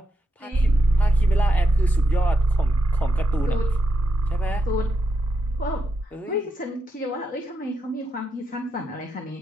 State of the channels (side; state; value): both; normal; correlation 0.85